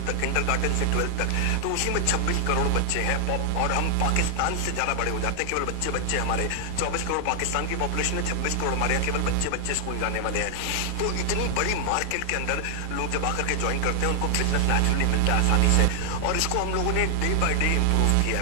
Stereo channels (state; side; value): different; both; correlation 0.00